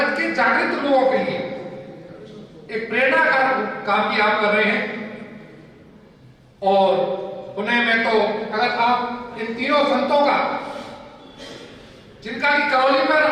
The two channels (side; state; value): both; identical; correlation 1.00